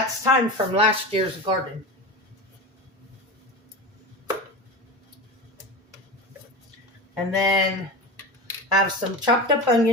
thyme from last year's garden. And then I have some chopped up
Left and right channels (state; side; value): normal; both; correlation 0.26